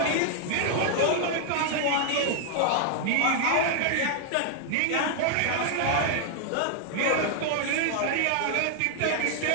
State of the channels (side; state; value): both; different; correlation 0.00